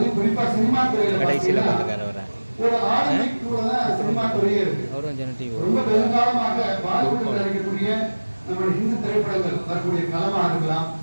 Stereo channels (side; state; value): both; inverted; correlation -1.00